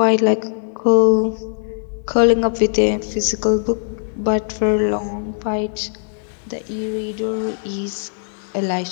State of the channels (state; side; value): silent; right; 66 dB below the other